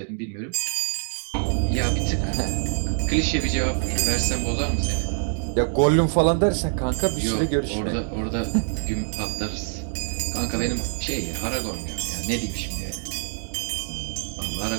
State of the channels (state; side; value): silent; left; digital silence